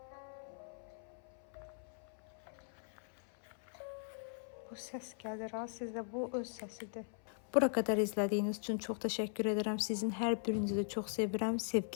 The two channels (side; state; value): right; silent; 51 dB below the other